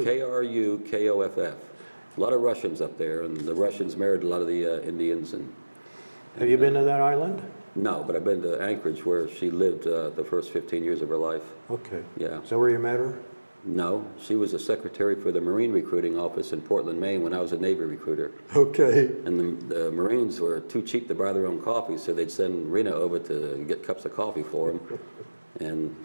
K-R-U-K-O-F-F. A lot of Russians up there, and the Russians married a lot of the Indians. Have you been to that island? No, but I've been to Anchorage, where she lived the first 15 years of her life. Okay. Yeah. Is that where you met her? No, she was a secretary for the Marine recruiting office in Portland, Maine, when I was a Navy recruiter. Okay. And the Marines were too cheap to buy their own coffee, so they'd send Rena over to get cups of coffee for them. And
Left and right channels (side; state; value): both; inverted; correlation -1.00